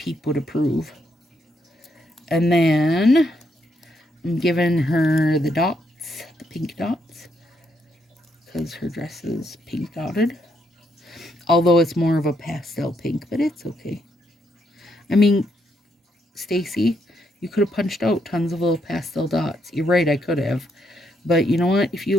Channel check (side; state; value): both; normal; correlation 0.76